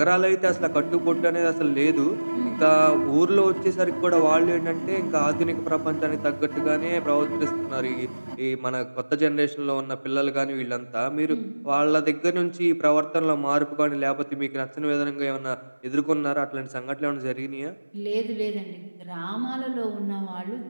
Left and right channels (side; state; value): both; inverted; correlation -1.00